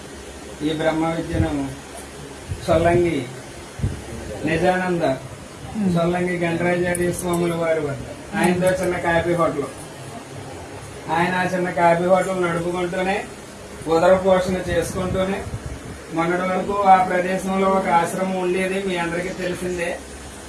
ఈ బ్రహ్మ విద్యను సొల్లంగి నిజానంద సొల్లంగి గణరాజార్య స్వాముల వారి వద్ద ఆయనతో చిన్న కాఫీ హోటల్, ఆయన ఆ చిన్న కాఫీ హోటల్ నడుపుకుంటూనే ఉదర పోషణ చేసుకుంటూనే మొన్నటి వరకు ఆ ప్రదేశంలో ఒక ఆశ్రమం ఉండేది, మీ అందరికీ తెలిసిందే.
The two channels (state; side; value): identical; both; correlation 1.00